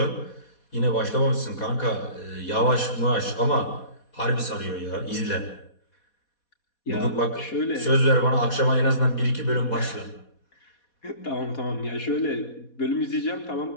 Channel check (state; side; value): late; right; 4.2 ms